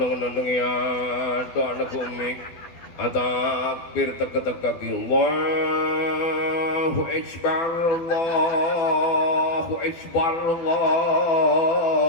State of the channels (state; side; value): late; right; 12 ms